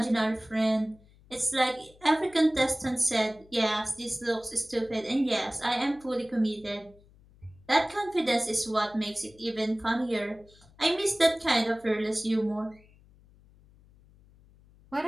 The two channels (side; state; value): left; noise; hum, 27 dB below the sound